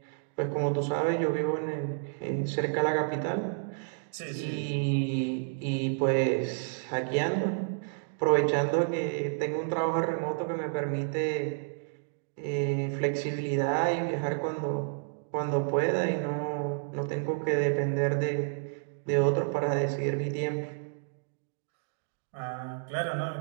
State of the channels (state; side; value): silent; left; digital silence